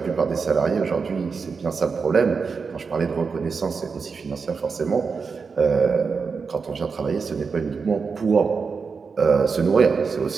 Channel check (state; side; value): quieter; left; 5.2 dB